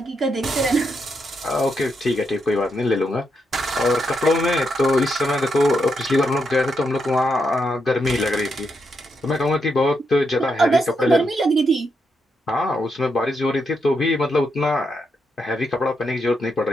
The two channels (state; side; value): normal; both; correlation 0.81